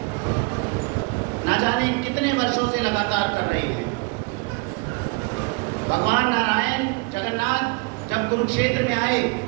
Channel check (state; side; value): quieter; left; 30.1 dB